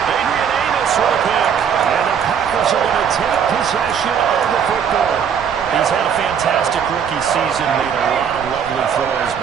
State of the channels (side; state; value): left; quieter; 7.7 dB